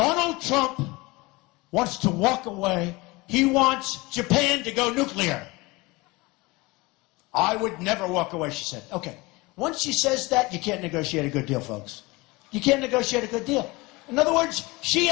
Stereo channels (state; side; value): quieter; right; 23.3 dB